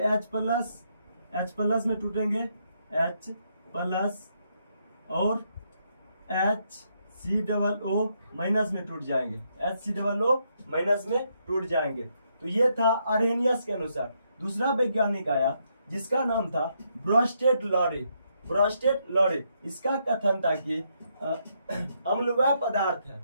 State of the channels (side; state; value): both; inverted; correlation -0.77